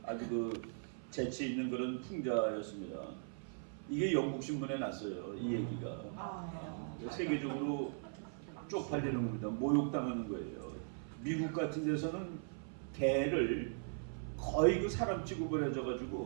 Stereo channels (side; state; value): left; silent; 52 dB below the other